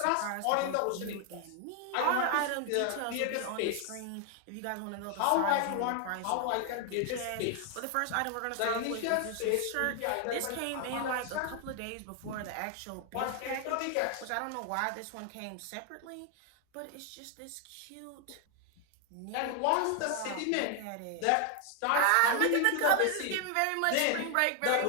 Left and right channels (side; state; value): both; different; correlation 0.00